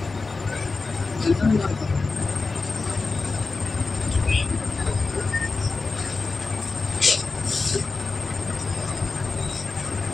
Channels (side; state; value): right; quieter; 3.9 dB